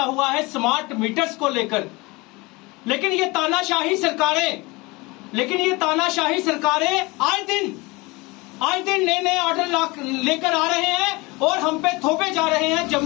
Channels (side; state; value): right; quieter; 24.3 dB